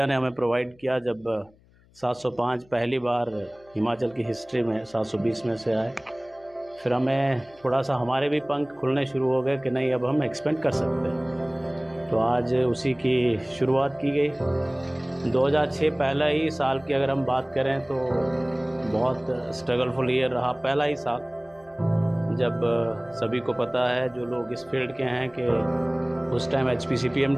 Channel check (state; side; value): noise; left; hum, 29 dB below the sound